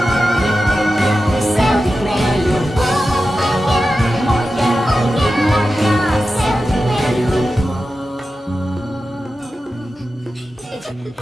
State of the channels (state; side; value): normal; both; correlation 0.92